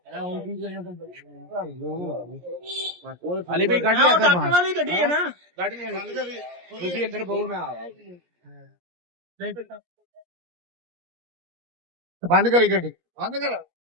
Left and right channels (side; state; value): left; late; 17 ms